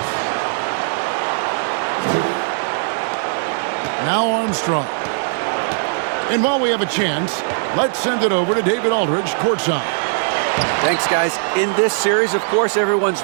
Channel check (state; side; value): silent; left; 59 dB below the other